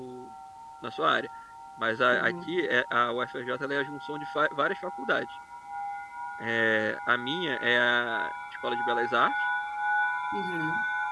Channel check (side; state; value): both; identical; correlation 1.00